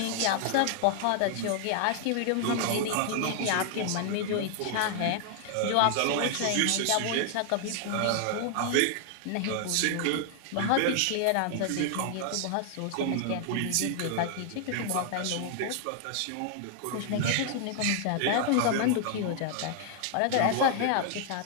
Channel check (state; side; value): different; both; correlation 0.00